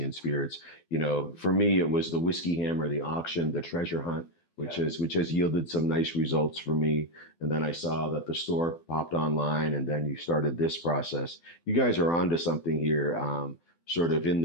Spirits. You know, for me, it was the Whiskey Hammer, the auction, the treasure hunt, which has yielded some nice results for me. And then I saw that the store popped online, and then you started this process. You guys are onto something here. Sort of in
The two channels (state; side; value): late; right; 12 ms